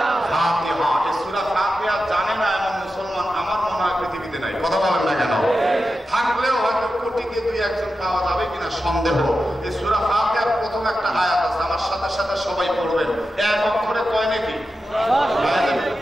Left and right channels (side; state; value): both; normal; correlation 0.91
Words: ফাতিহা। এই সূরা ফাতিহা জানে না এমন মুসলমান আমার মনে হয় পৃথিবীতে নাই। কথা বলেন না কেন? থাকলেও হয়তো কোটিতে দুই একজন পাওয়া যাবে কিনা সন্দেহ। এই সূরা ফাতিহার প্রথম একটা আয়াত আছে, আমার সাথে সাথে সবাই পড়বেন। এক অক্ষরে কয় নাকি?